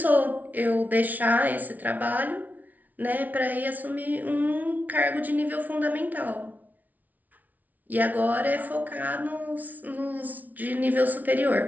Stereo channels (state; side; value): late; left; 0.076 ms